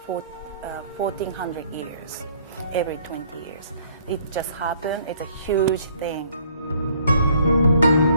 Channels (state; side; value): inverted; both; correlation -0.61